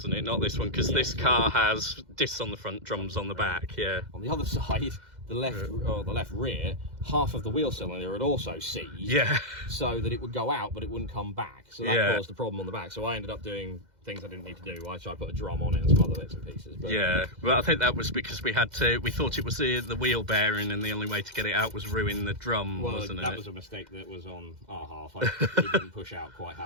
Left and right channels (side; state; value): left; late; 2.0 ms